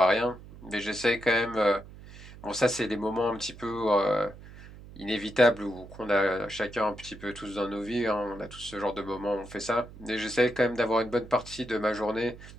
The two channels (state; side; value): noise; right; hum, 17 dB below the sound